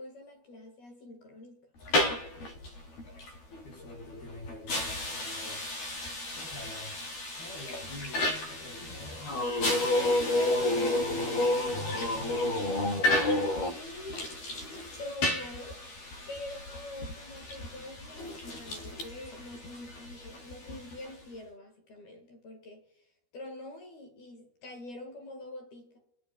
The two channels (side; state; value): right; late; 12 ms